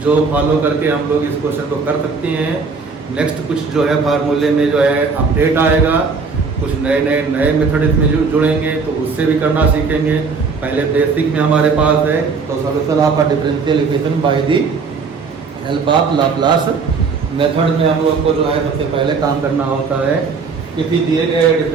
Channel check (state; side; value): quieter; left; 4.9 dB